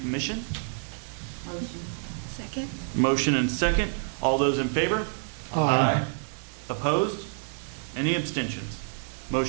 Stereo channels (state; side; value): silent; left; digital silence